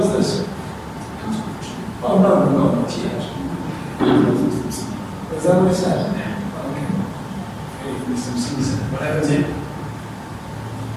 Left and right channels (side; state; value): both; identical; correlation 1.00